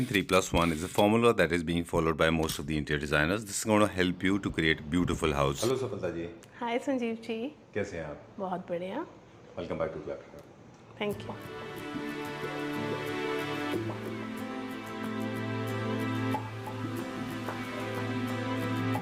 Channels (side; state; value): both; identical; correlation 1.00